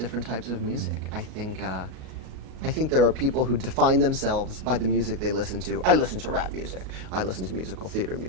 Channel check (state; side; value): late; left; 37 ms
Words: types of music. I think there are people who define themselves by the music they listen to. I listen to rap music. I listen to musical theater